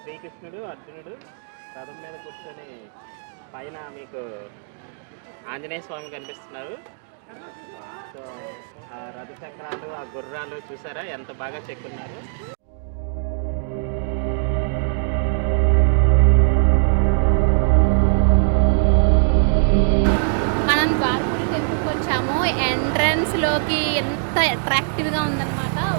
శ్రీకృష్ణుడు అర్జునుడు రథం మీద కూర్చొని పైన మీకు ఆంజనేయ స్వామి కనిపిస్తున్నారు. సో ఆ రథ చక్రాలు, ఆ గుర్రాలు చూసారా ఎంత బాగా చెక్కున్నారు. మనం ద్వారపూడి టెంపుల్కి వచ్చాము. ఎంట్రన్స్లోకి ఎంత అట్రాక్టివ్గా ఉందన్నమాట.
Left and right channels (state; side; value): silent; left; digital silence